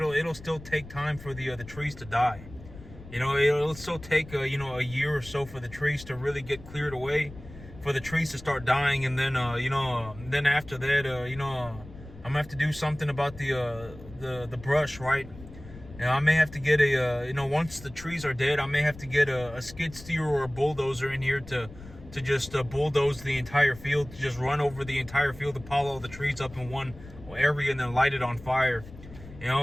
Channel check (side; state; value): left; noise; rumble, 17 dB below the sound